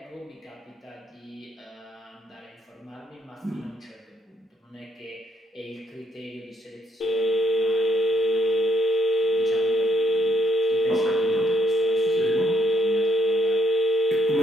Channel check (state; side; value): normal; both; correlation 0.68